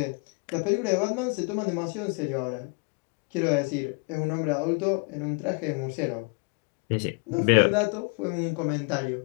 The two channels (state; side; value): quieter; right; 33.5 dB